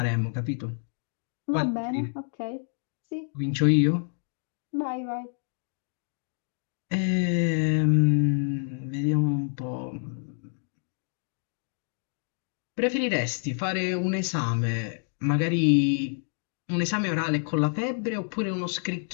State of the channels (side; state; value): right; silent; digital silence